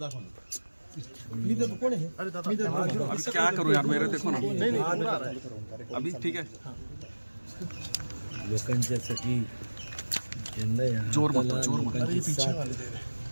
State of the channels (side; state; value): both; inverted; correlation -1.00